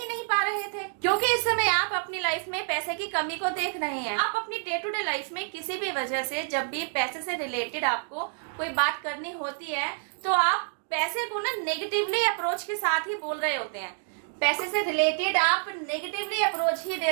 नहीं पा रहे थे, क्योंकि इस समय आप अपनी लाइफ में पैसे की कमी को देख रहे हैं। आप अपनी डे टू डे लाइफ में किसी भी वजह से जब भी पैसे से रिलेटेड आपको कोई बात करनी होती है तो आप पैसे को ना नेगेटिवली अप्रोच के साथ ही बोल रहे होते हैं, पैसे से रिलेटेड आप नेगेटिवली अप्रोच ही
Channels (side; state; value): left; silent; 59 dB below the other